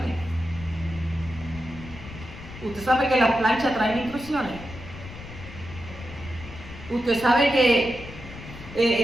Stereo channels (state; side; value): noise; left; rumble, 14 dB below the sound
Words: Usted sabe que las planchas traen instrucciones. Usted sabe